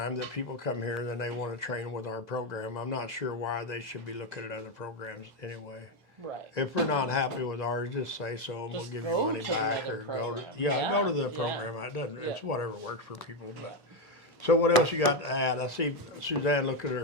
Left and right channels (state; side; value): normal; both; correlation 0.07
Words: that people come here and then they want to train with our program. I'm not sure why they should be looking at other programs anyway. Right. If we're not happy with ours, just say so, and we'll Just give you go money to back, another or go to program. go to the Yeah. program. It doesn't. It's Yeah. whatever works for people. But so what else you got to add? I see Suzanne look at